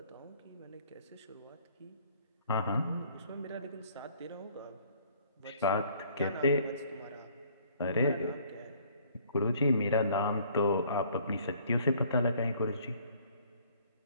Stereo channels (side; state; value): both; inverted; correlation -0.59